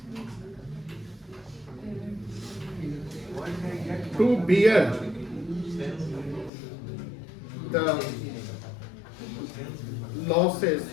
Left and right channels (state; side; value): drops out; right; at 6.5 s